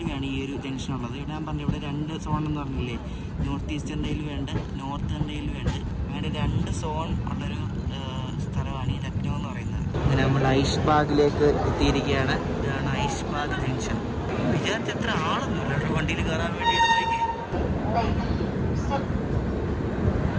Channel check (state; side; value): identical; both; correlation 1.00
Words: ഈ ഒരു ജംഗ്ഷൻ ഉള്ളത്. ഇവിടെ ഞാൻ പറഞ്ഞു, ഇവിടെ 2 സോൺ എന്ന് പറഞ്ഞില്ലേ, നോർത്ത് ഈസ്റ്റേൺ റെയിൽവേ ഉണ്ട്, നോർത്തേൺ റെയിൽവേ ഉണ്ട്. അങ്ങനെ 2 സോൺ ഉള്ളൊരു സ്ഥലമാണ് ഈ ലക്നൗ എന്ന് പറയുന്നത്. അങ്ങനെ നമ്മൾ ഐഷ്ബാഗിലേക്ക് എത്തിയിരിക്കുകയാണ്. ഇതാണ് ഐഷ്ബാഗ് ജംഗ്ഷൻ. വിചാരിച്ച എത്ര ആളൊന്നുമില്ല കേട്ടോ വണ്ടിയിൽ കയറാൻ വേണ്ടിയിട്ട്.